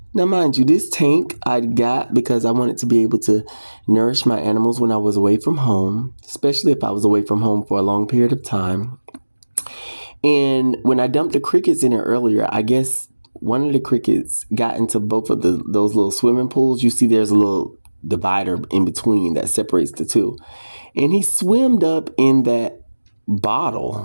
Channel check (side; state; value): both; inverted; correlation -1.00